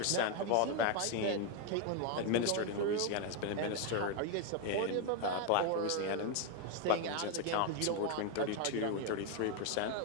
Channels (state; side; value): different; both; correlation 0.01